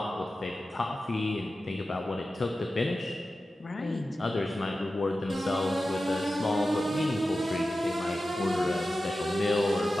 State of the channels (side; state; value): both; normal; correlation 0.93